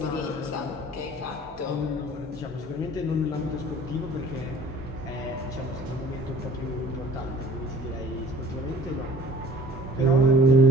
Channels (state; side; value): normal; both; correlation 0.49